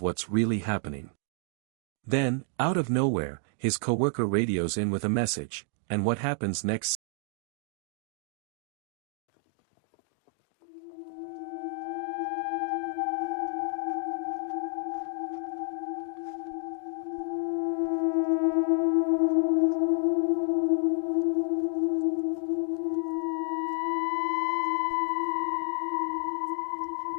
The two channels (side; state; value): right; drops out; at 7.0 s